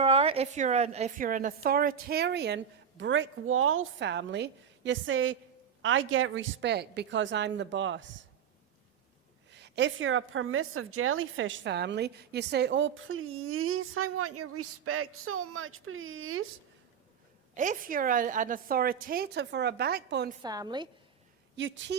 are, if you're an authoritarian brick wall family, you say, I get respect because I'm the boss. If you're a permissive jellyfish family, you say, oh, please, I want your respect so much, please. If you're an authoritative or a backbone family, you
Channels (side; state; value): left; quieter; 7.8 dB